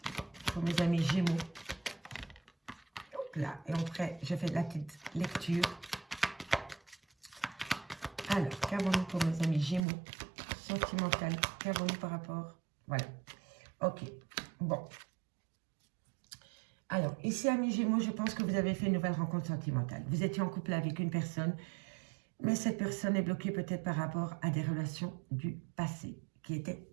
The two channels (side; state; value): left; drops out; at 9.8 s